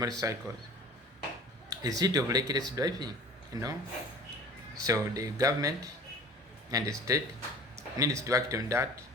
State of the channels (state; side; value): normal; both; correlation 0.43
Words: is it of reckless driving? So the government and the state needs to act on that